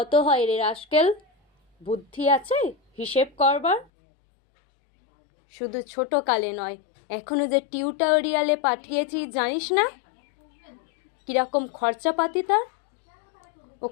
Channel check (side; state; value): right; drops out; at 3.9 s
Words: হয় রে রাস্কেল? বুদ্ধি আছে হিসেব করবার? শুধু ছোট কালে নয়, এখনো যে টিউটোরিয়ালে পাঠিয়েছি জানিস না কিরকম খরচাপাতি তার?